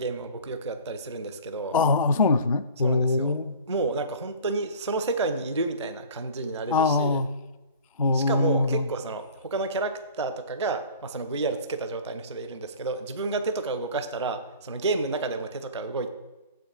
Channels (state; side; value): inverted; both; correlation -0.43